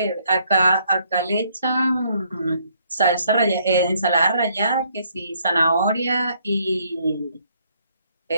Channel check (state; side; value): inverted; both; correlation -0.68